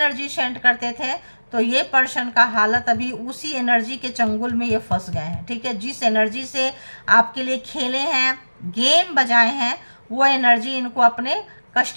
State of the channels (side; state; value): both; inverted; correlation -1.00